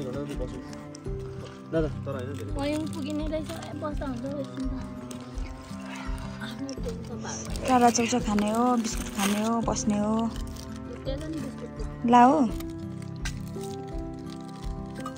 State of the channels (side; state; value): both; identical; correlation 1.00